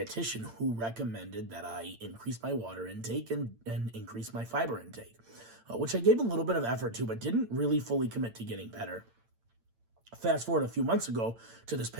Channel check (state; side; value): late; left; 8.8 ms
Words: who recommended that I increase my water intake and increase my fiber intake, which I gave a little bit of effort to, but didn't really fully commit to getting better. Fast forward a few months ago to this